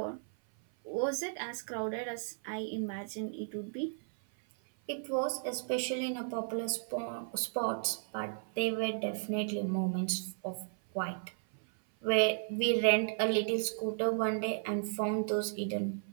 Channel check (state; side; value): silent; left; 55 dB below the other